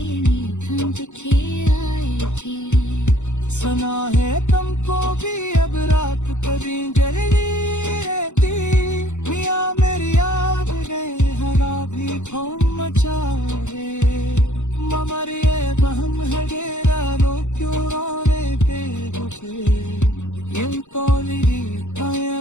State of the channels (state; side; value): late; right; 0.84 ms